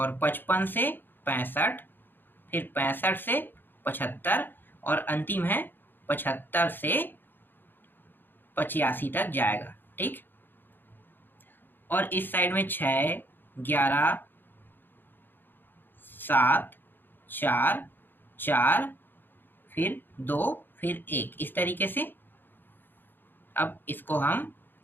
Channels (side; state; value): right; late; 0.095 ms